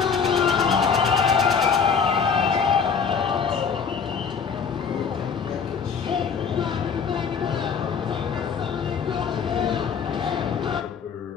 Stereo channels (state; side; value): quieter; right; 6.2 dB